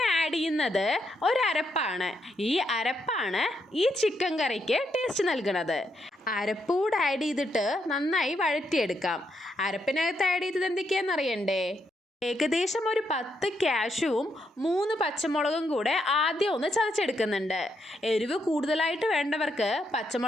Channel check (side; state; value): both; normal; correlation 0.79